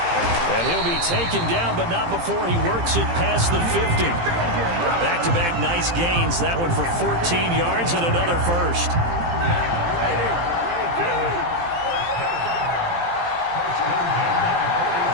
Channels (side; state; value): left; late; 17 ms